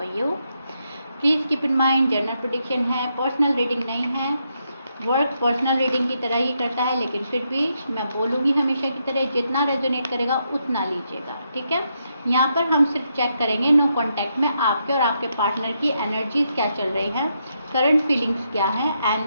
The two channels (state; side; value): inverted; both; correlation -0.80